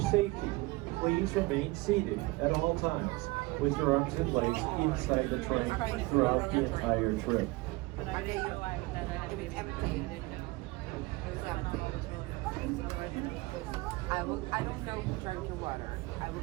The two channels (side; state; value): left; quieter; 22.7 dB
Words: please remain seated at all times with your arms and legs inside the train throughout the entire trip. I don't know who drank your water. I will